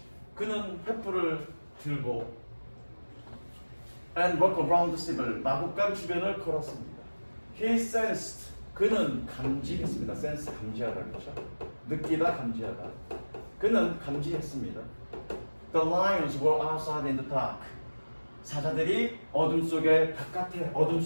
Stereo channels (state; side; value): inverted; both; correlation -1.00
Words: 그는 횃불을 들고 and walked around the stable. 마구간 주변을 걸었습니다. He sensed. 그는 감지했습니다. sense 감지하다 그렇죠? 느끼다 감지하다. 그는 감지했습니다. The lions were outside in the dark. 사자들이 어둠